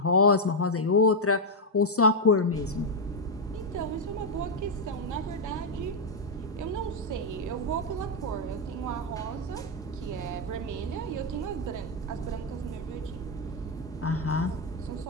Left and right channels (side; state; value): both; normal; correlation -0.01